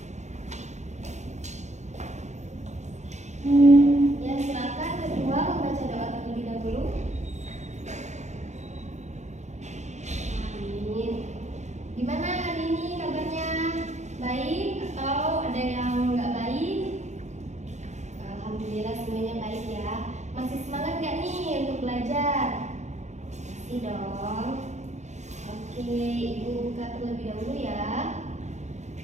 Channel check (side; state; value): left; late; 0.33 ms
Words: Ya, silakan kedua membaca doa terlebih dahulu. Amin. Gimana hari ini kabarnya? Baik atau ada yang nggak baik? Alhamdulillah semuanya baik ya. Masih semangat nggak nih untuk belajar? Masih dong. Oke, Ibu buka terlebih dahulu ya.